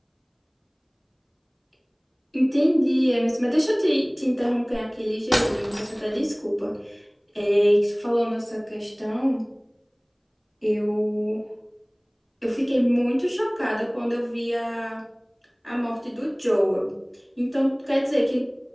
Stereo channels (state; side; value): identical; both; correlation 1.00